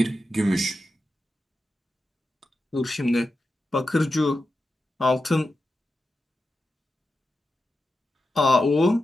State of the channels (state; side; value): normal; both; correlation 0.90